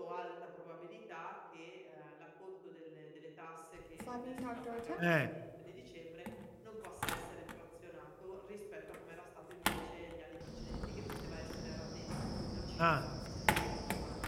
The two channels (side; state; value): both; identical; correlation 1.00